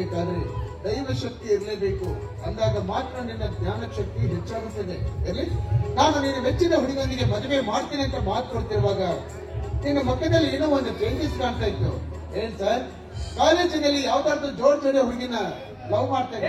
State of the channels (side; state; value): both; identical; correlation 1.00